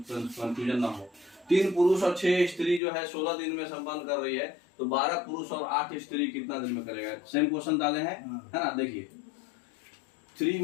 कंफ्यूजन ना हो। 3 पुरुष और 6 स्त्री जो है 16 दिन में संपन्न कर रही है, तो 12 पुरुष और 8 स्त्री कितना दिन में करेगा? सेम क्वेश्चन डाले हैं, है ना। देखिए 3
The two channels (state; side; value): drops out; right; at 2.8 s